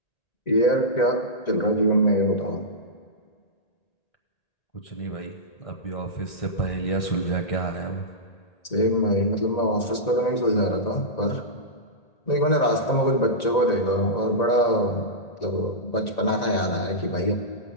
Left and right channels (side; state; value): right; late; 1.9 ms